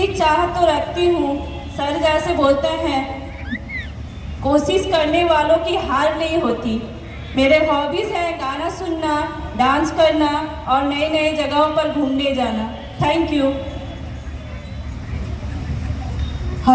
चाह तो रखती हूँ। सर जैसे बोलते हैं, कोशिश करने वालों की हार नहीं होती। मेरे हॉबीज हैं गाना सुनना, डांस करना और नई नई जगहों पर घूमने जाना। Thank you.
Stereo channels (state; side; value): identical; both; correlation 1.00